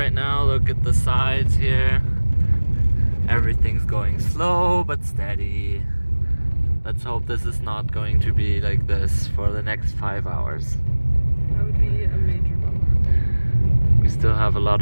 now. Look at the sides here. Everything's going slow but steady. Let's hope this is not going to be like this for the next 5 hours. That would be a major bummer. We still have a lot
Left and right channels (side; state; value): both; inverted; correlation -1.00